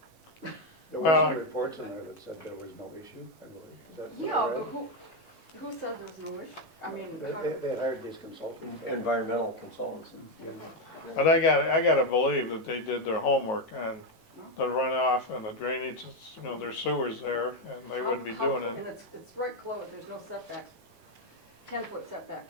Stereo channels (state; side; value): late; right; 19 ms